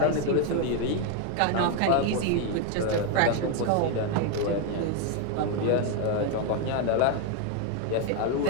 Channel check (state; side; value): different; both; correlation 0.01